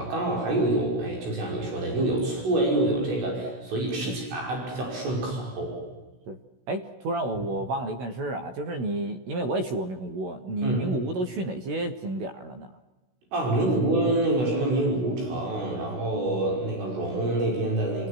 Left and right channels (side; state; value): left; late; 16 ms